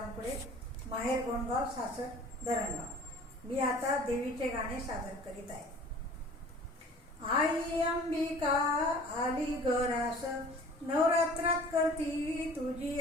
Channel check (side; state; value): both; normal; correlation 0.47